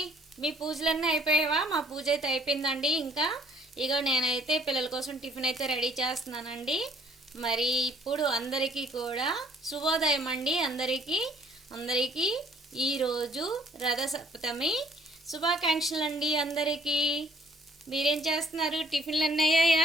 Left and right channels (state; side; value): normal; both; correlation 0.60